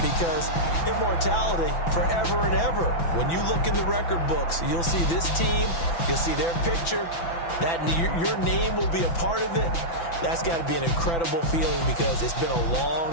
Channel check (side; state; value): right; late; 6.0 ms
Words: because immortality forever and ever. When you look in the record books, you'll see this team, you'll see their picture, that your name will be a part of it. That's got to be an incredible feeling, because it's been a